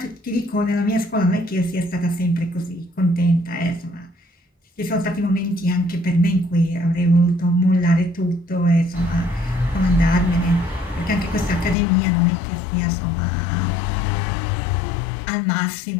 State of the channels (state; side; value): drops out; right; at 11.8 s